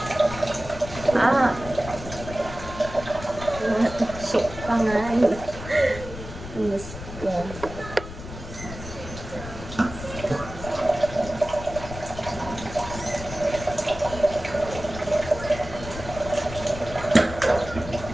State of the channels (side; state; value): left; noise; rumble, 11 dB below the sound